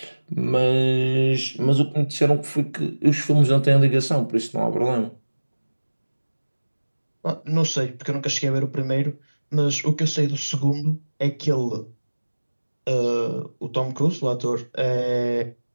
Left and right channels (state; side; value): inverted; both; correlation -1.00